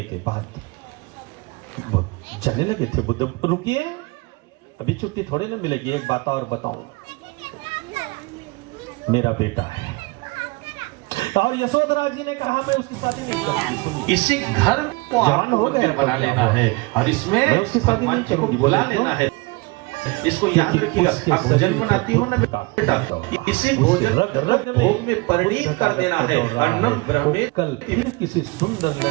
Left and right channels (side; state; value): left; quieter; 25.3 dB